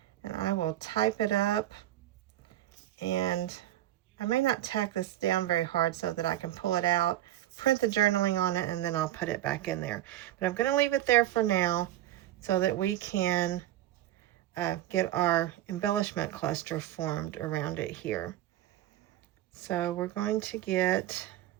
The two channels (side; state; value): left; quieter; 13.5 dB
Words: And I will type it up, and I may not tack this down very hard so that I can pull it out, print the journaling on it, and then I'll put it back in there. But I'm going to leave it there for now so that we can get our embellishment cluster formed around it here. So we're going to get